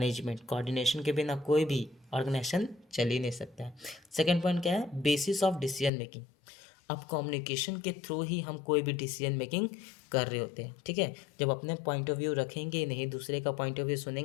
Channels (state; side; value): drops out; right; at 5.9 s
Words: Coordination के बिना कोई भी ऑर्गेनाइजेशन चल ही नहीं सकता है। सेकेंड पॉइंट क्या है, बेसिस ऑफ डिसीजन मेकिंग। अब कम्युनिकेशन के थ्रू ही हम कोई भी डिसीजन मेकिंग कर रहे होते हैं। ठीक है, जब अपने पॉइंट ऑफ व्यू रखेंगे नहीं, दूसरे का पॉइंट ऑफ व्यू